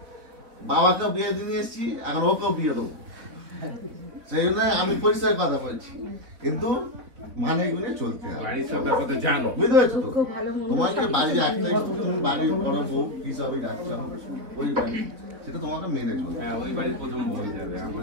বাবাকেও বিয়ে দিয়ে এসছি, এখন ওকেও বিয়ে দেবো, সেই জন্য আমি পরিষ্কার কথা বলছি, কিন্তু মানে এগুলো চলতে হবে। বাড়ির সব ব্যাপার তো জানো। বুঝতে পারছো তো? তোমাকে বাড়ির একটাই, তুমি বাড়ির বড় বউ হিসাবে যাচ্ছ, ওই বাড়ি সেটা তোমাকে মেনে চলবে। হ্যাঁ, ওই বাড়ির প্রথম হয়ে যাবে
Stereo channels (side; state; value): left; late; 3.7 ms